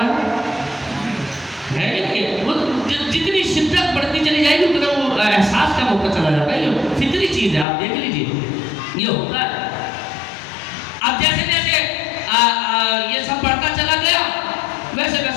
وہ جتنی شدت بڑھتی چلی جائے گی اتنا وہ احساس کا موقع چلا جاتا ہے. یہ فطری چیز ہے, آپ دیکھ لیجیے یہ ہوتا ہے. اب جیسے جیسے یہ سب بڑھتا چلا گیا ویسے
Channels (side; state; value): right; drops out; at 7.7 s